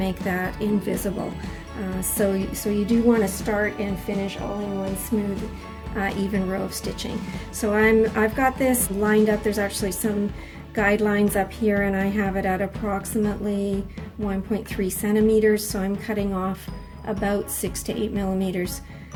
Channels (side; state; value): both; identical; correlation 1.00